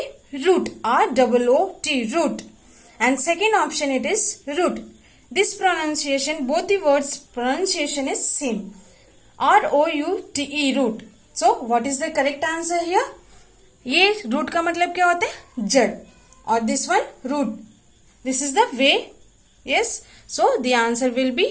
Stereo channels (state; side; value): identical; both; correlation 1.00